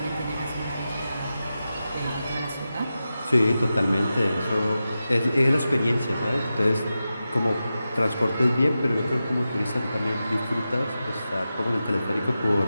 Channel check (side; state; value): both; inverted; correlation -0.92